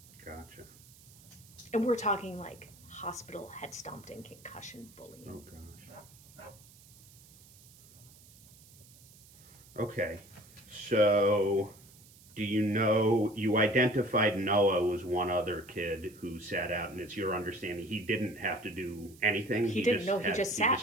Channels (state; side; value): noise; right; hiss, 23 dB below the sound